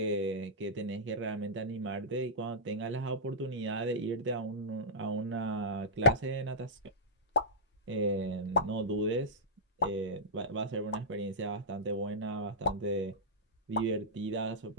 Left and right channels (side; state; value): both; normal; correlation -0.11